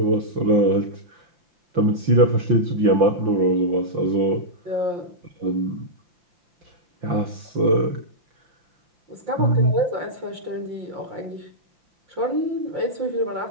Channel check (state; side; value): late; left; 5.8 ms